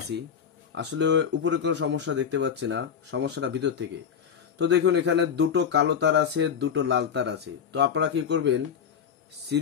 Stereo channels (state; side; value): quieter; right; 7.5 dB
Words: আসলে উপরে কোনো সমস্যা দেখতে পাচ্ছি না, সমস্যাটা ভিতর থেকে। তো দেখুন এখানে দুটো কালো তার আছে, দুটো লাল তার আছে। তো আপনারা কি করবেন,